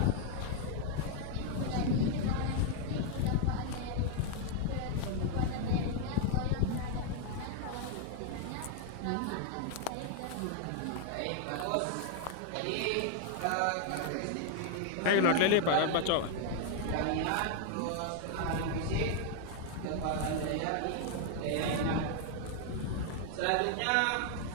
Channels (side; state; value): both; different; correlation 0.00